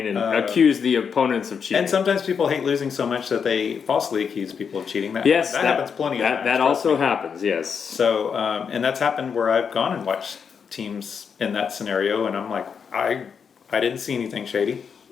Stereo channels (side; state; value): right; quieter; 6.5 dB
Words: and accuse the opponents of cheating. And sometimes people hate losing so much that they falsely accuse people of cheating. That happens plenty of times. That trust also me. happens. Yes. So, and that's happened where I've gone and watched teams in that scenario, and I'm like, I didn't see anything shady.